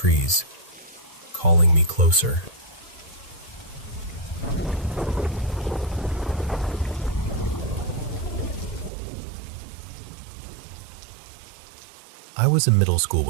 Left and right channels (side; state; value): left; drops out; at 8.9 s